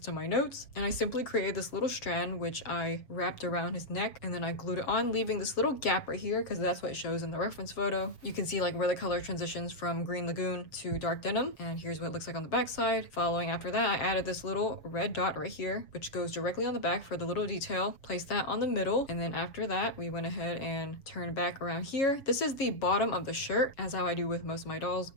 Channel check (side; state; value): right; late; 7.1 ms